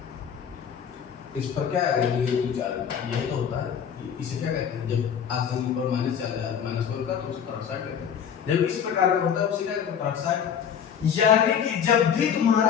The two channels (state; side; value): quieter; right; 8.0 dB